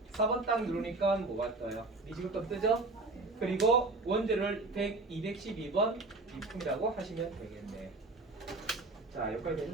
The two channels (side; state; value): left; quieter; 3.2 dB